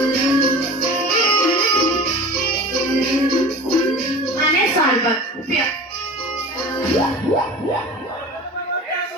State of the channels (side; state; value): both; normal; correlation 0.36